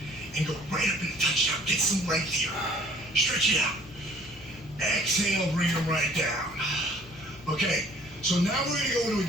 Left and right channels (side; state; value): both; normal; correlation 0.54